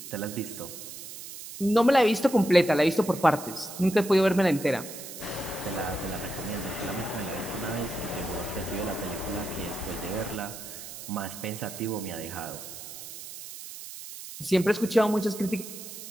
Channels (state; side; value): noise; right; hiss, 12 dB below the sound